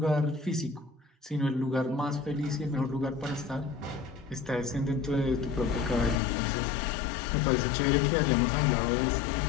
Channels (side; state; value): right; drops out; at 6.2 s